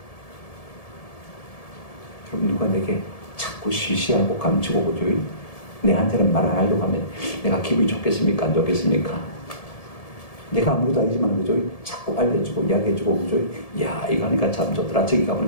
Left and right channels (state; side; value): late; right; 1.7 ms